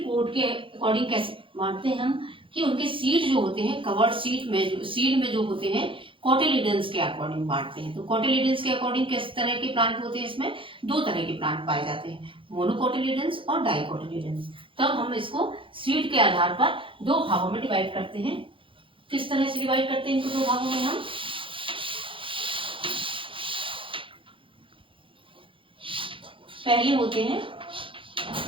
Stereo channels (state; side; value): late; left; 0.25 ms